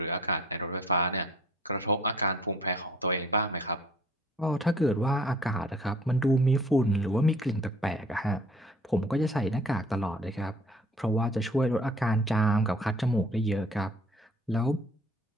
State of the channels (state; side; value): normal; both; correlation 0.53